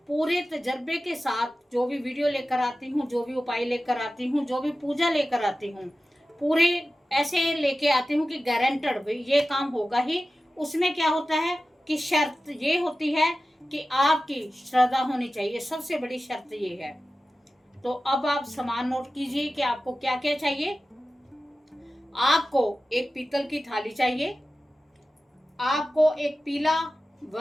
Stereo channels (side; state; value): both; normal; correlation 0.94